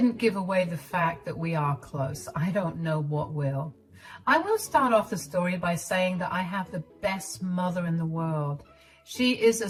give away the fact that we are close, I don't know what will. I will start off the story by saying that I have the best mother in the world. She is a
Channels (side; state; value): both; identical; correlation 1.00